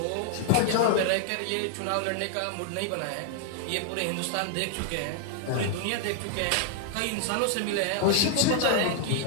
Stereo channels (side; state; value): both; different; correlation 0.00